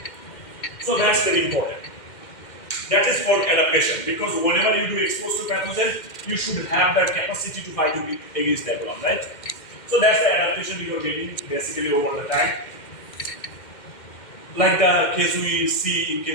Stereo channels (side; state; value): right; late; 2.1 ms